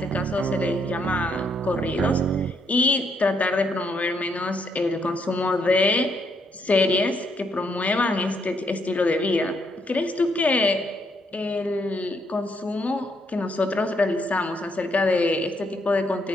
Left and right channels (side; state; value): both; normal; correlation 0.74